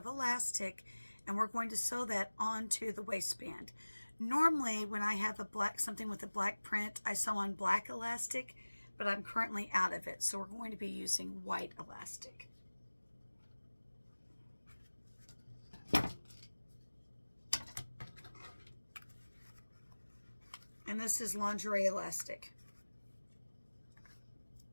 elastic, and we're going to sew that onto the waistband. Normally, when I have something with a black print, I sew on black elastic, but I'm currently out of it, so we're going to be using white elastic. And this is lingerie elastic.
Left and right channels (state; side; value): inverted; both; correlation -1.00